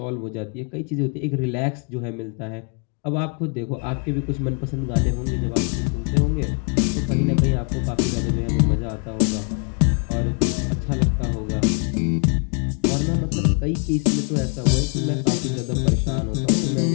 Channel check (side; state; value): right; quieter; 39.3 dB